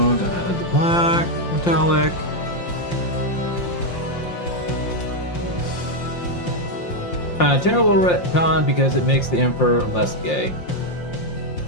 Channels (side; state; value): right; late; 5.7 ms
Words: to add the black, metallic. Terrible retcon because it makes the Emperor less gay.